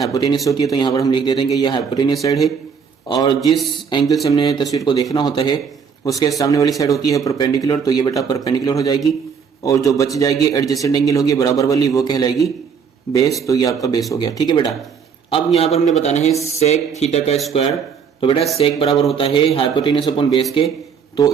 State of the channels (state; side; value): quieter; left; 6.4 dB